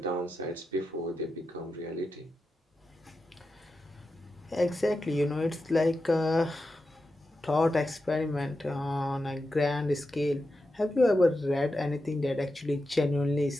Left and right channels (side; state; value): both; normal; correlation 0.89